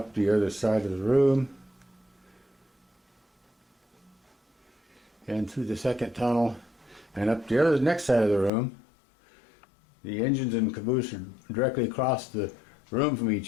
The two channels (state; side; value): drops out; right; at 8.5 s